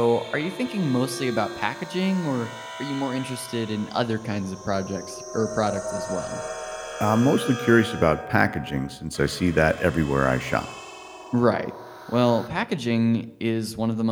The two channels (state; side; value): identical; both; correlation 1.00